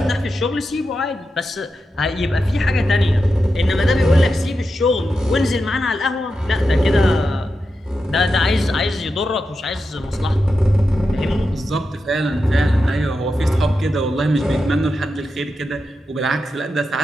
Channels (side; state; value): both; normal; correlation 0.89